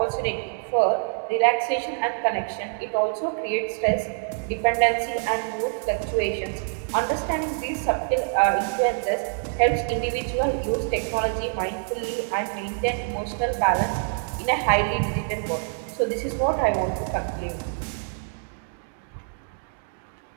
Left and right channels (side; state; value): left; silent; digital silence